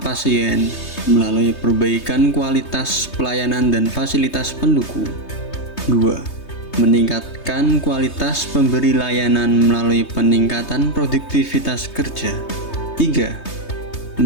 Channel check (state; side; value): late; right; 3.2 ms